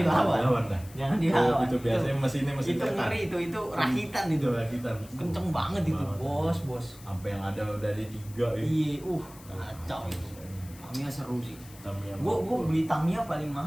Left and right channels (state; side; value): noise; left; hiss, 21 dB below the sound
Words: dah. Jangan dilawan. Itu biasanya mesin itu ngeri itu rakitan itu. rakitan. Kenceng banget itu, bos. Sampai yang ada dari 3 ya. Iya, kacau itu. Tamiya seru sih. Tamiya. Gua beli Tamiya paling